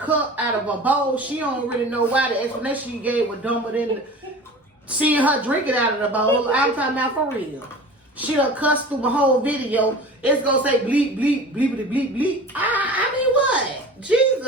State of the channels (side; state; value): both; normal; correlation 0.38